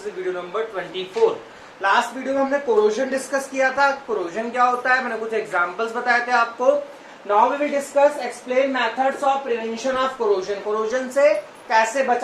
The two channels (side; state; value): both; identical; correlation 1.00